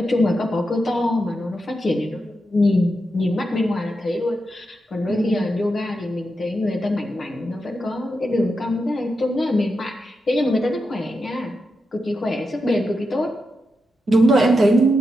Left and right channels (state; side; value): normal; both; correlation 0.87